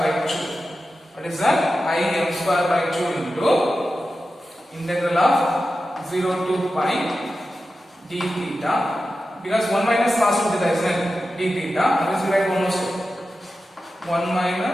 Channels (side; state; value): both; normal; correlation 0.92